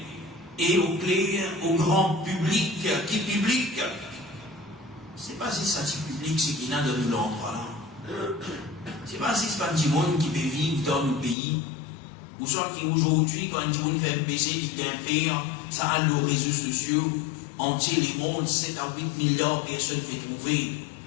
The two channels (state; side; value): drops out; right; at 11.4 s